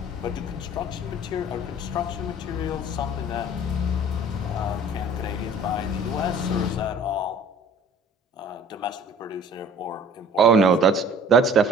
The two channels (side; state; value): both; normal; correlation 0.50